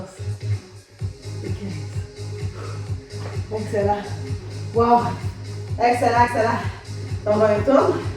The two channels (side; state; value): both; identical; correlation 1.00